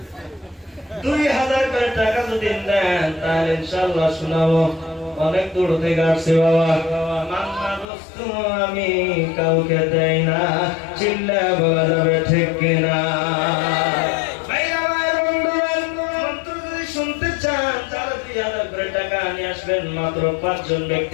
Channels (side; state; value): right; drops out; at 7.9 s